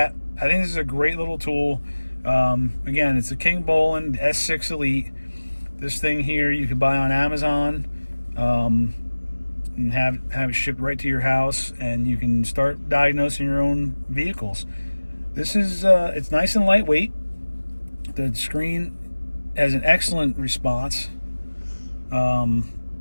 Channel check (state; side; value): inverted; both; correlation -1.00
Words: I think this is a great little tool. Again, it's a Kingbolen S6 Elite. This thing here you can buy on Amazon and have it shipped right to your house, and you can start diagnosing your own vehicles. This is it's nice and lightweight. The screen has an excellent response.